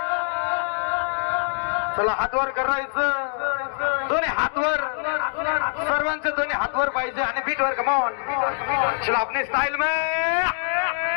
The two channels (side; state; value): right; silent; digital silence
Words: चला हातवर करायचं, दोन्ही हातवर, सर्वांचे दोन्ही हातवर पाहिजे आणि बीटवर. कमॉन चला अपने स्टाईल में